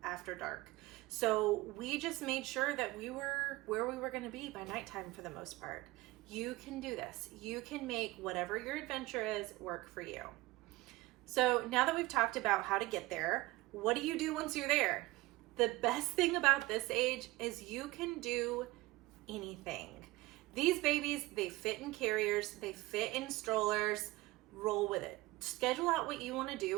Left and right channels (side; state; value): left; quieter; 20.0 dB